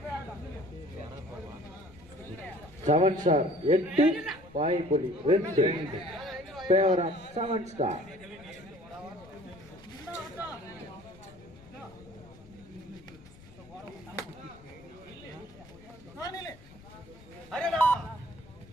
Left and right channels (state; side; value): noise; left; rumble, 21 dB below the sound